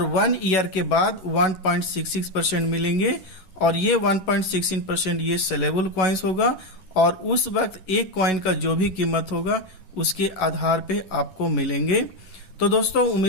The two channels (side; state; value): right; late; 11 ms